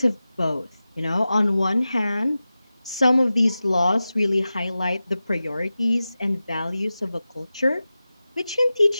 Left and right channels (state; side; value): inverted; both; correlation -0.95